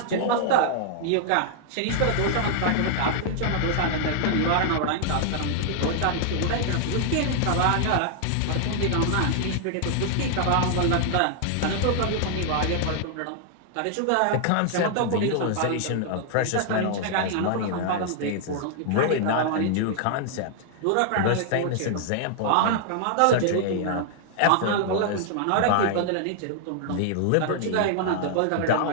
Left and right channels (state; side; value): different; both; correlation -0.01